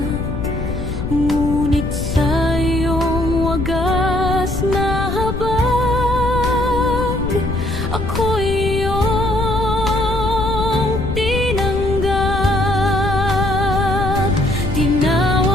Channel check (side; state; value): left; noise; rumble, 4 dB below the sound